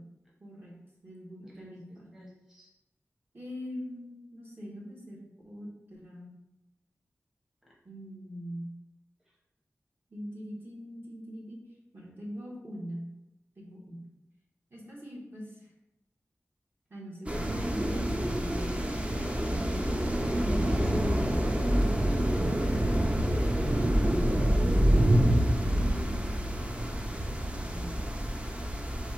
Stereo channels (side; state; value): both; normal; correlation 0.95